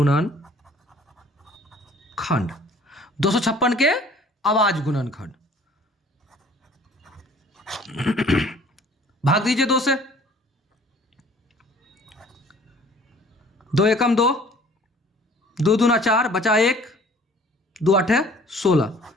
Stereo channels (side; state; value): both; normal; correlation 0.53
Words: 256 के अभाज्य गुणनखंड भाग दीजिए 2 से। 2 एकम 2, 2 दूना 4, बचा 1, 2 8 16,